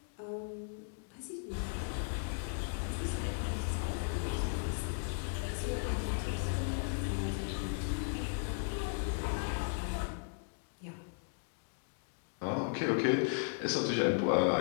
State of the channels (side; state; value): right; silent; digital silence